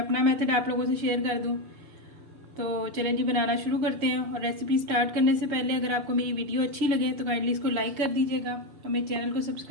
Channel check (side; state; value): left; late; 6.8 ms